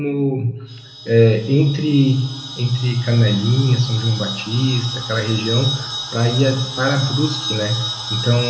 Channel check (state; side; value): identical; both; correlation 1.00